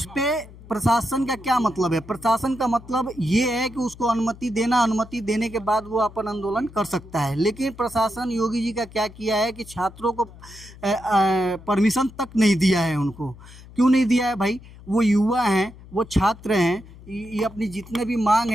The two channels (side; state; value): left; noise; hum, 19 dB below the sound